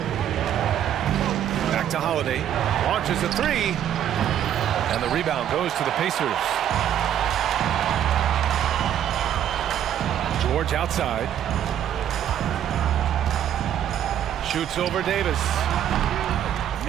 Back to Holiday. Launches a 3. And the rebound goes to the Pacers. George outside. Shoots over Davis.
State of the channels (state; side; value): quieter; left; 10.3 dB